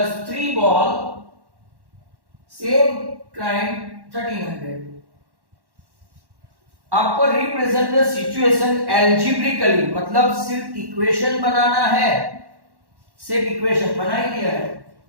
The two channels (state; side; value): late; left; 1.1 ms